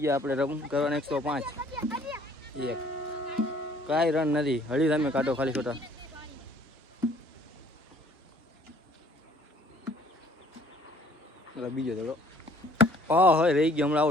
આપણે રન કરવાના 105. એક કાંઈ રન નથી. હળી તમે કાઢો ખાલી છોટા. બીજો દડો હોય રહી ગયો. હમણાં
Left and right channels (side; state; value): both; normal; correlation 0.57